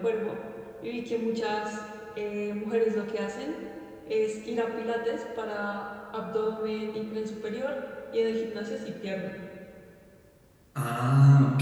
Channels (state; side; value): identical; both; correlation 1.00